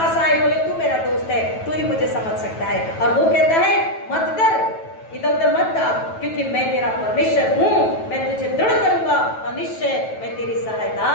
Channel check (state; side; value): late; right; 9.2 ms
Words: आए, बोले तू मेरा दोस्त है, तू ही मुझे समझ सकता है। और वो कहता है मत डर, इधर उधर मत भाग, क्योंकि मैं तेरा परमेश्वर हूँ। मैं तुझे दृढ़ करूंगा और निश्चय मैं तेरी सहायता